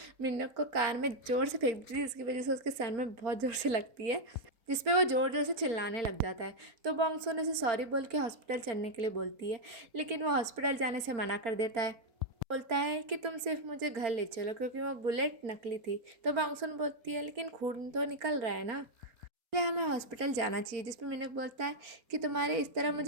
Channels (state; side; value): late; left; 4.1 ms